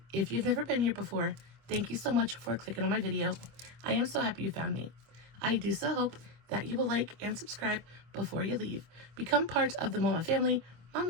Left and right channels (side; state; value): left; late; 25 ms